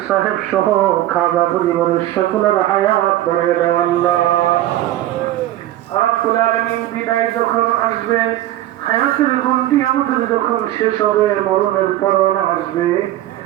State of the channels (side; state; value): left; quieter; 14.2 dB